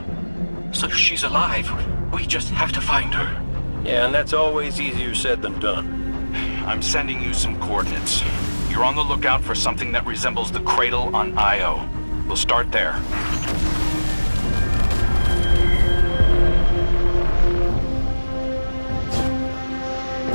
So she's alive. We just have to find her. Yeah, and that's always easier said than done. I'm sending you some coordinates. You're on the lookout for something that resembles the cradle on Io. We'll start there.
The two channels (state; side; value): inverted; both; correlation -1.00